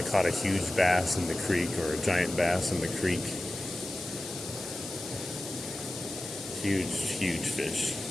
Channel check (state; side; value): noise; left; hiss, 10 dB below the sound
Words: caught a huge bass in the creek, or a giant bass in the creek. Huge, huge fish.